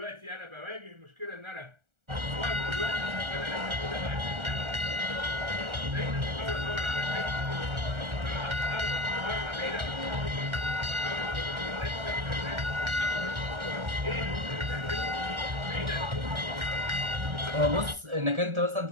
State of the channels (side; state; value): left; late; 1.4 ms